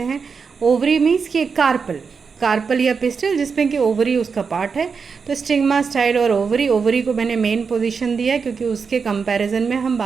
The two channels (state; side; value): quieter; left; 5.5 dB